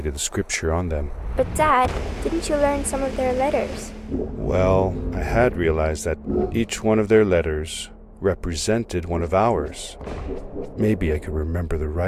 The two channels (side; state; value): both; identical; correlation 1.00